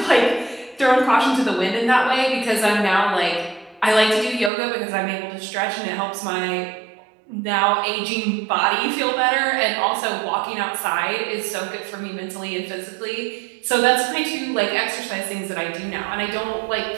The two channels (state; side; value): drops out; left; at 4.5 s